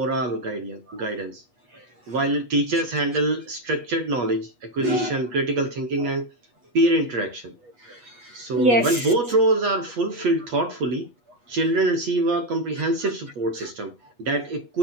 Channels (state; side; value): late; left; 8.3 ms